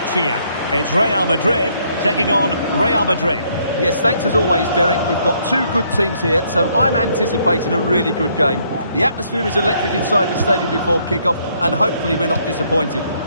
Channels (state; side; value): inverted; both; correlation -0.69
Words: here. It's Real Madrid taking on Real Madrid. Yes, thanks as always, Derek. We've got two good teams here, so I'm anticipating a really good game. The atmosphere is electric inside the stadium before kick-off, and hopefully we're not disappointed.